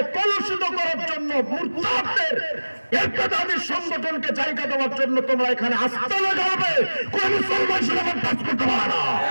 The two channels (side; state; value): both; inverted; correlation -1.00